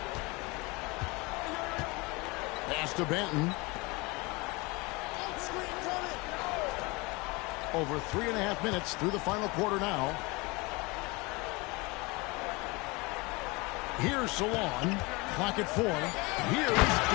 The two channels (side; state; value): right; quieter; 25.6 dB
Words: Pass to Benton. Over 3.5 minutes through the final quarter now. Here's Salon. Clock at 4. Here's